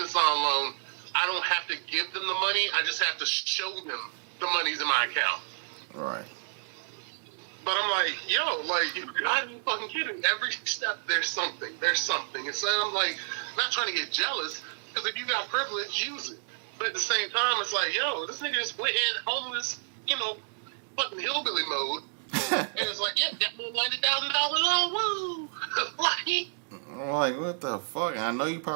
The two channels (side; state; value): left; silent; digital silence